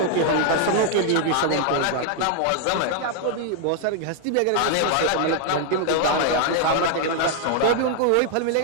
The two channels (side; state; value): both; different; correlation 0.00